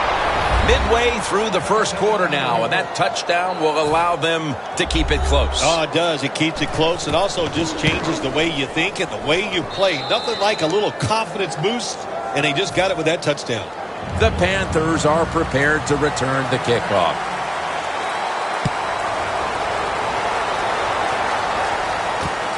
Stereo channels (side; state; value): both; identical; correlation 1.00